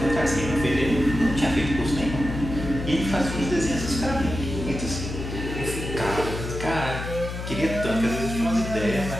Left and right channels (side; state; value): left; noise; hum, 6 dB below the sound